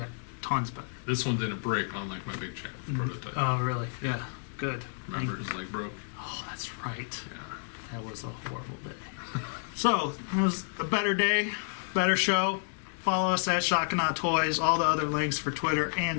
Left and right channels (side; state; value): right; silent; digital silence